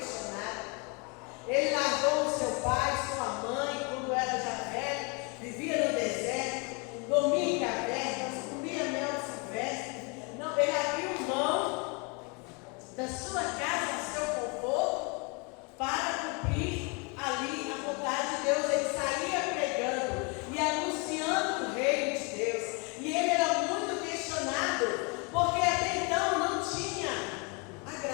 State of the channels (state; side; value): quieter; right; 32.2 dB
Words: Ele largou o seu pai, sua mãe, quando era já velho, vivia no deserto, dormia em cavernas, comia mel silvestre. Não, ele abriu mão da sua casa, seu conforto, para cumprir ali a vontade de Deus. Ele saía pregando e anunciando o reino de Deus. E ele era muito questionado, porque até então não tinha a